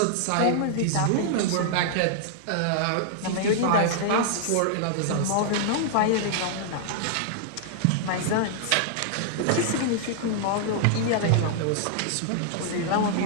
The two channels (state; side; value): different; both; correlation -0.01